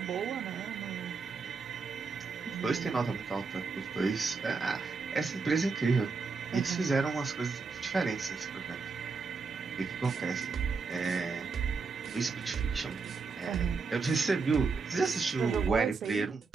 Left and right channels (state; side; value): quieter; left; 4.7 dB